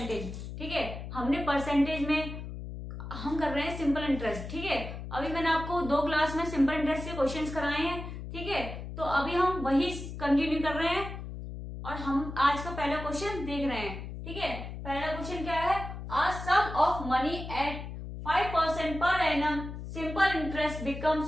ठीक है, हमने परसेंटेज में हम कर रहे हैं सिंपल इंटरेस्ट। ठीक है, अभी मैंने आपको 2 क्लास में सिंपल इंटरेस्ट के क्वेश्चंस कराए हैं। ठीक है, तो अभी हम वही कंटिन्यू कर रहे हैं और हम आज का पहला क्वेश्चन देख रहे हैं। ठीक है, पहला क्वेश्चन क्या है, a sum of money at 5% per annum simple interest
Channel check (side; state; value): left; noise; hum, 9 dB below the sound